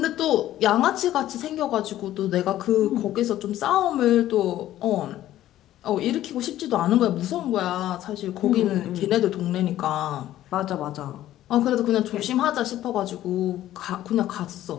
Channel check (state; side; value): quieter; right; 13.4 dB